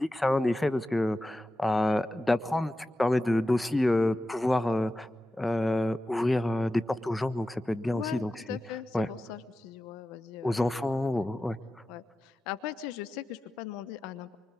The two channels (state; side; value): normal; both; correlation 0.93